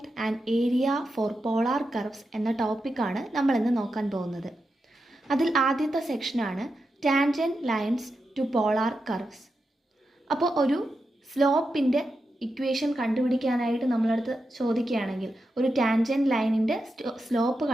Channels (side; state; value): both; normal; correlation 0.88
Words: and area for polar curves എന്ന ടോപ്പിക്കാണ് നമ്മളിന്ന് നോക്കാൻ പോകുന്നത്. അതിൽ ആദ്യത്തെ സെക്ഷനാണ് tangent lines to polar curves. അപ്പോൾ ഒരു സ്ലോപ്പിൻ്റെ ഇക്വേഷൻ കണ്ടുപിടിക്കാനായിട്ട് നമ്മളടുത്ത് ചോദിക്കുകയാണെങ്കിൽ, ഒരു ടാൻജൻറ്റ് ലൈനിൻ്റെ സ്ലോപ്പ്